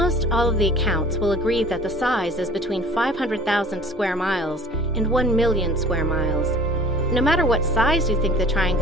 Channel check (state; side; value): normal; both; correlation 0.46